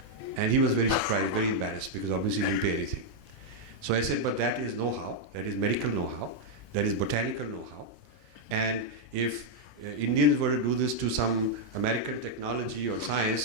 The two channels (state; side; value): normal; both; correlation -0.02